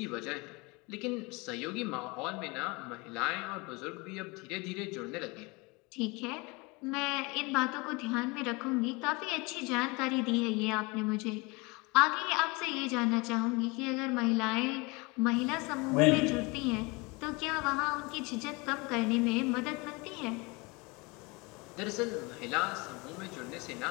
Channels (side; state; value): right; quieter; 26.5 dB